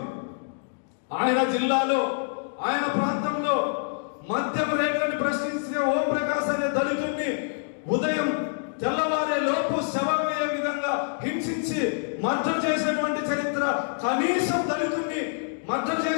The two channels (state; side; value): silent; right; digital silence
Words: ఆయన జిల్లాలో ఆయన ప్రాంతంలో మద్యం రేట్లను ప్రశ్నించే ఓం ప్రకాశ్ అనే దళితుడిని ఉదయం తెల్లవారే లోపు శవమయ్యే విధంగా హింసించి మర్డర్ చేసినటువంటి చరిత్ర. కనీసం దళితుడిని మర్డర్